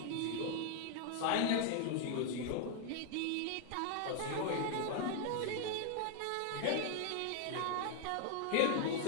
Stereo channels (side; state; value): both; different; correlation 0.00